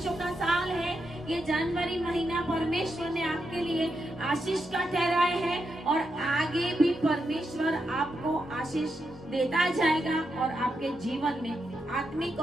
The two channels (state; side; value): normal; both; correlation 0.85